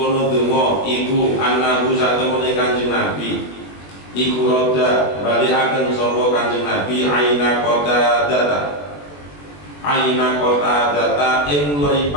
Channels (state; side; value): late; right; 21 ms